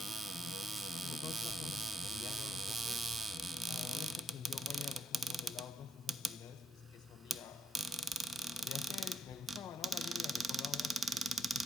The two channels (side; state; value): both; normal; correlation 0.80